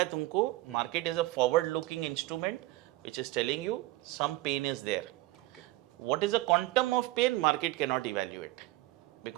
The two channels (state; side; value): quieter; left; 18.6 dB